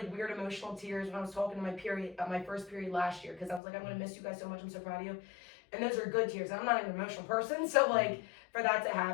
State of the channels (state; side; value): drops out; right; at 3.6 s